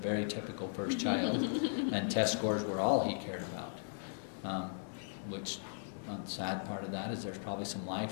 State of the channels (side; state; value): right; silent; digital silence